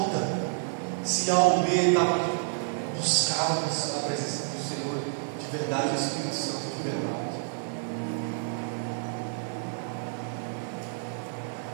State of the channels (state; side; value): silent; left; digital silence